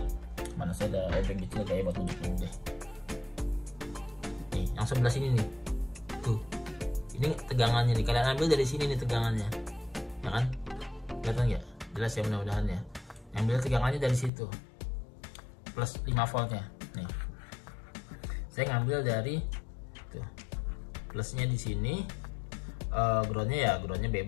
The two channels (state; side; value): drops out; right; at 14.3 s